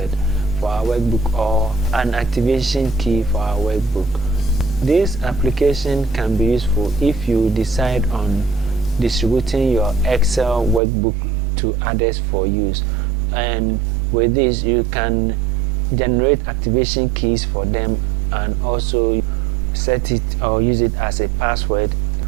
for our workbook or an activation key for our workbook. This application can be useful if you decide on distributing your Excel workbook to others for use, and with this you can generate activation keys for them and also set it or use it as a password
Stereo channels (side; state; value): left; drops out; at 10.8 s